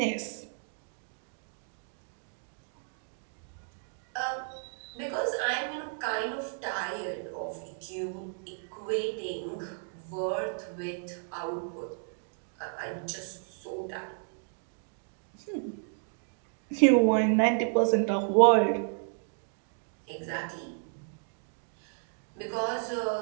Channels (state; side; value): silent; left; digital silence